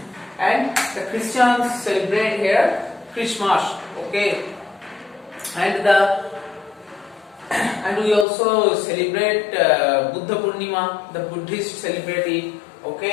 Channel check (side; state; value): right; drops out; at 8.2 s